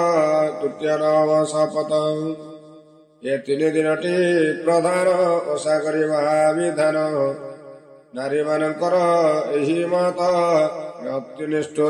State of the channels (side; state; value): both; identical; correlation 1.00